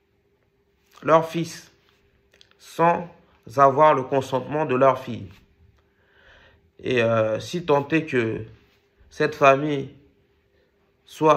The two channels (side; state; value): both; identical; correlation 1.00